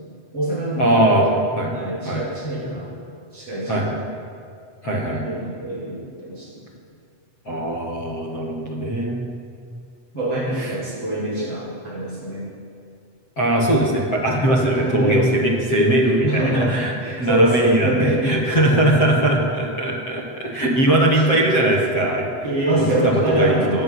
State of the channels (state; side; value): late; right; 7.9 ms